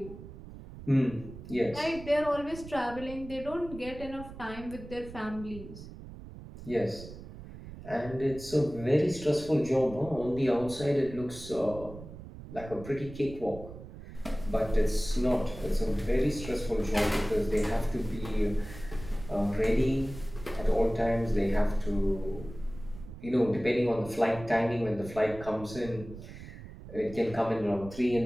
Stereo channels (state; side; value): noise; right; rumble, 14 dB below the sound